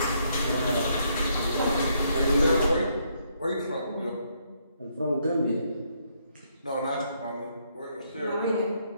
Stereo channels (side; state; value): both; inverted; correlation -0.73